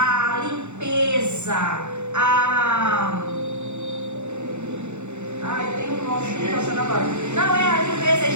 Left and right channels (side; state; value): left; late; 0.83 ms